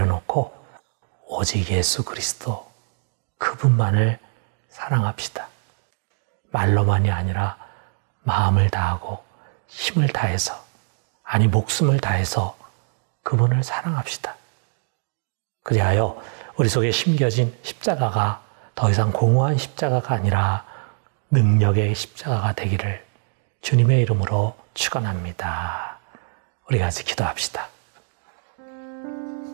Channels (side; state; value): left; silent; digital silence